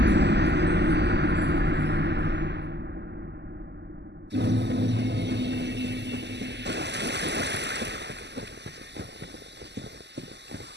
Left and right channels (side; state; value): left; late; 0.50 ms